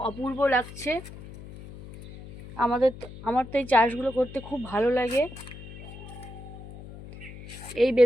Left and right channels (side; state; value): left; noise; hum, 15 dB below the sound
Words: অপূর্ব লাগছে। আমার তো এই চাষগুলো করতে খুব ভালো লাগে। এই